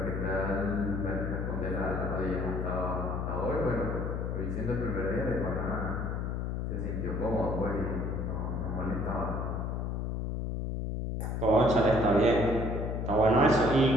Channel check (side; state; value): left; noise; hum, 2 dB below the sound